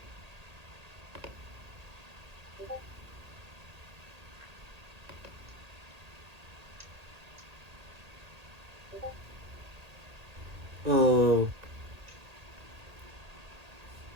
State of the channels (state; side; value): late; left; 1.8 ms